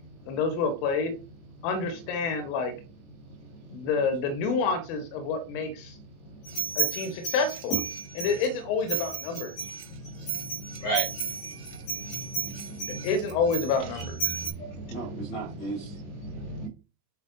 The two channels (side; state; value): right; late; 24 ms